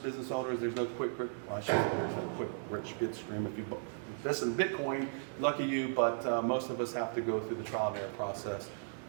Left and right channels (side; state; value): left; silent; digital silence